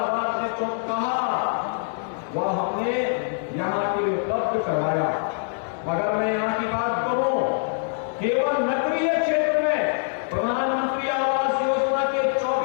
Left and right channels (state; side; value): silent; right; digital silence